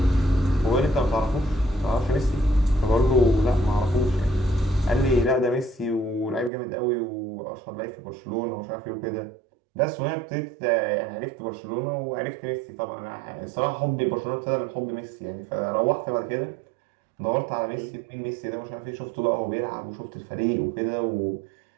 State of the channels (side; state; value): left; drops out; at 6.5 s